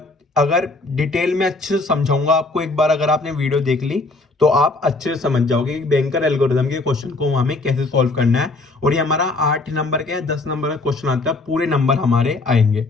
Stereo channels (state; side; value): quieter; right; 3.3 dB